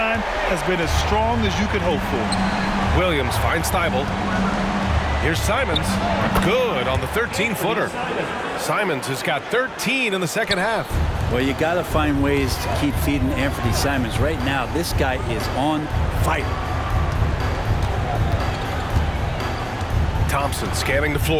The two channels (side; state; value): both; identical; correlation 1.00